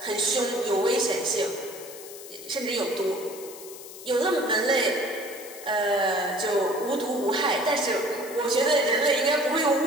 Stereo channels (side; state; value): left; noise; hiss, 15 dB below the sound